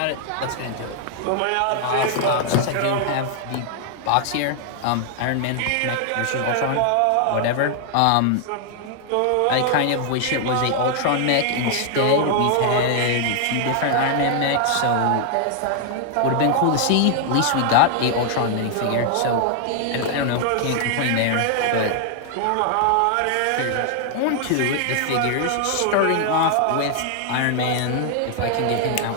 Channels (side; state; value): both; different; correlation 0.00